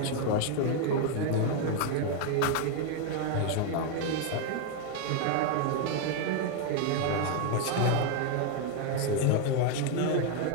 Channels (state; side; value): different; both; correlation 0.00